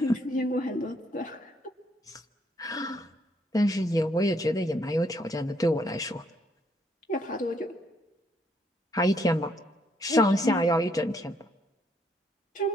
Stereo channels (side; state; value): both; normal; correlation 0.71